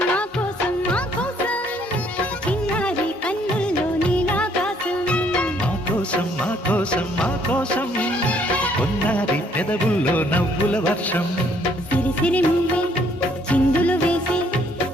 మా కోసం మా కోసం చిన్నారి కన్నుల్లో నీలాకాశం మా కోసం మా కోసం మా కోసం కొన్నారి పెదవుల్లో నవ్వుల వర్షం సిరి సిరి మువ్వే చిందులు వేసి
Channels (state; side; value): normal; both; correlation 0.65